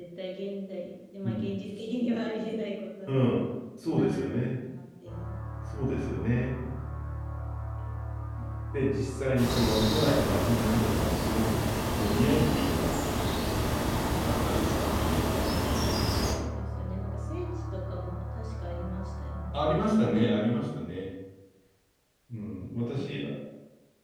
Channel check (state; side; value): identical; both; correlation 1.00